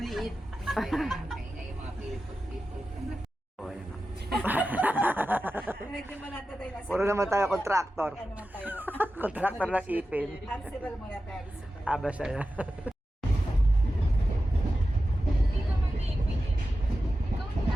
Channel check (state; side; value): normal; both; correlation 0.93